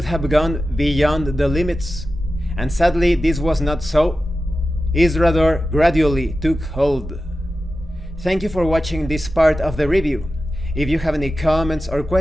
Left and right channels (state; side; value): normal; both; correlation 0.93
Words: have gone beyond the limits, and sadly this was not so. Isrador gradually took hold. Thank you for watching this part of the review. If you have any comments or